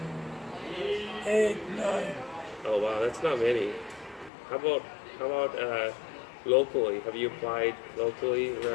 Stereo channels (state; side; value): drops out; right; at 4.3 s